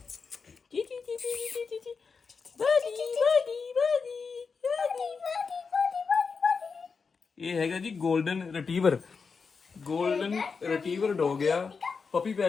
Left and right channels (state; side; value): quieter; right; 5.2 dB